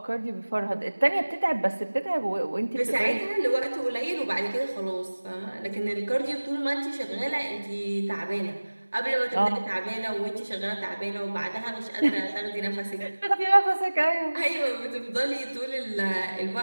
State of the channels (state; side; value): inverted; both; correlation -1.00